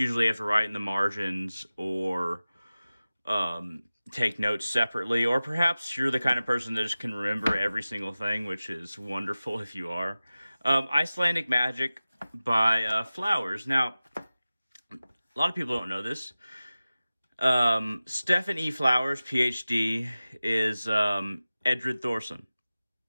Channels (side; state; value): both; inverted; correlation -0.97